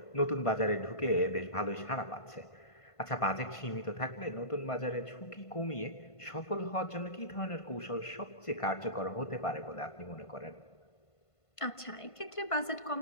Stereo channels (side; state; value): right; late; 1.5 ms